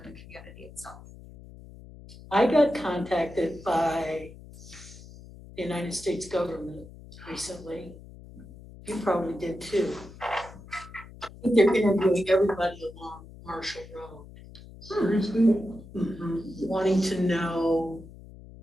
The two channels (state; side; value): noise; left; hum, 18 dB below the sound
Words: community itself. I got contacted by the United States government recently. You probably did too. I think they're interviewing everybody along Marshall Road. Seriously? Wanting to know